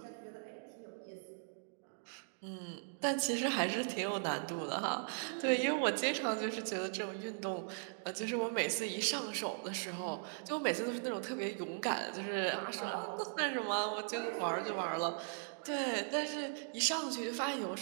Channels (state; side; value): silent; left; digital silence